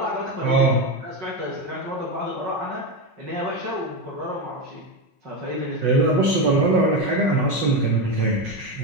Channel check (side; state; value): left; late; 5.4 ms